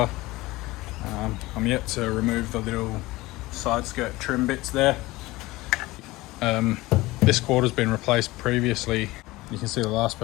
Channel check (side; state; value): right; quieter; 19.8 dB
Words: I'm yet to remove the little side skirt trim bits there. This quarter's been replaced previously. You can see the last